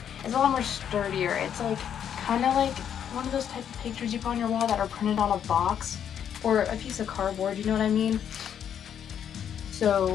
it's a lot more sturdier. It's like kind of like one of those type of pictures you put on your wall that are printed on a box or a piece of cardboard, you know what I mean?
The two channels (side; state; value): right; quieter; 8.9 dB